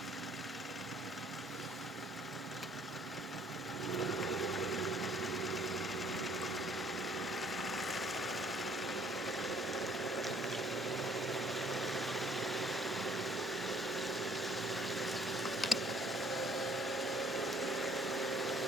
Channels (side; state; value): both; normal; correlation 0.61